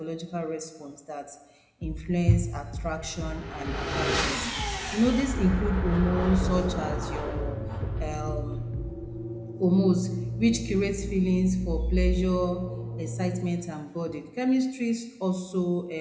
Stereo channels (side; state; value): both; identical; correlation 1.00